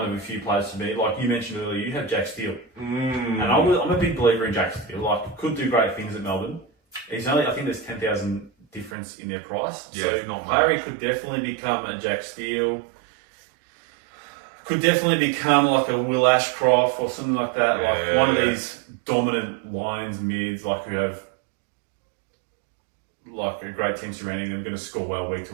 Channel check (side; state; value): left; drops out; at 9.0 s